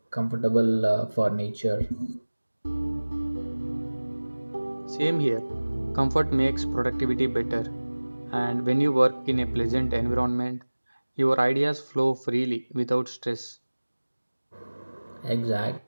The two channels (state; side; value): inverted; both; correlation -1.00